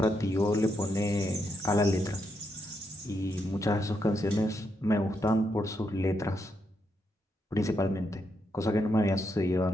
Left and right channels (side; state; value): both; normal; correlation 0.80